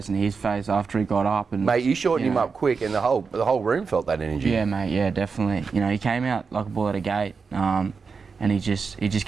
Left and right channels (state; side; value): quieter; left; 5.1 dB